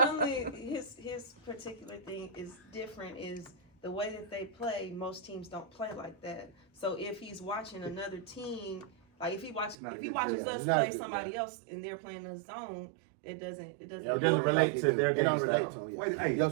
his particular thing is different is the way that they play. Most teams don't play like that. So if he's watching another team, like if he watches us not play good, somebody else and they're playing a zone, it doesn't It doesn't relate to their They don't game relate style. to them. Way, Yeah. hey, Your way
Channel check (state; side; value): drops out; left; at 9.8 s